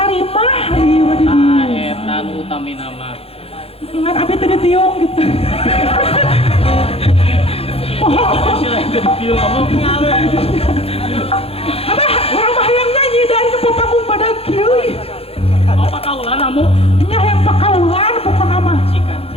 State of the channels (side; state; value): right; late; 0.28 ms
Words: ieu mah di Ah, dieu. eta nu utamina mah. Ingat abi teh ditiung gitu. Sila itu ditiung kamu. Abah, urang mah hayang nyanyi dari nu panggung pada kieu. Apa kaulan Amu? Nya hayang pakaulan pokona mah. Cikan.